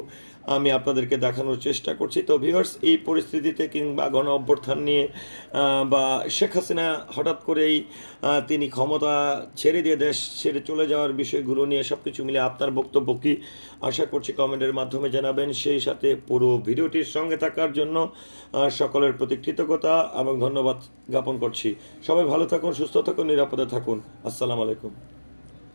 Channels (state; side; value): inverted; both; correlation -1.00